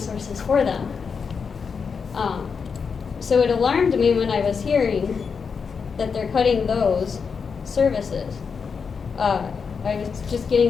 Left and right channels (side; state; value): right; quieter; 5.8 dB